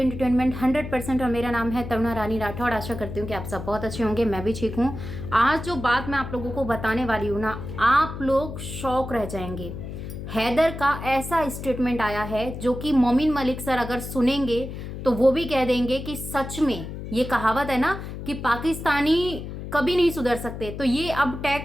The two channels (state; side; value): noise; left; hum, 8 dB below the sound